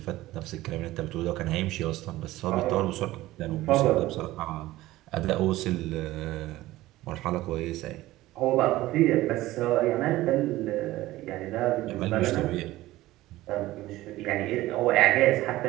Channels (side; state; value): left; quieter; 16.9 dB